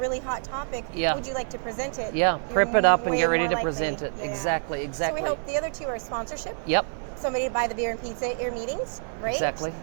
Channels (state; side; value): silent; left; 60 dB below the other